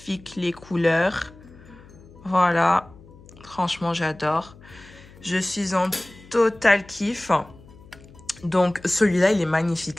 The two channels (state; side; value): noise; left; hum, 22 dB below the sound